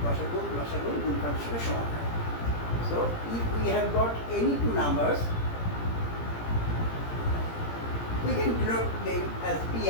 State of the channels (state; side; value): late; right; 17 ms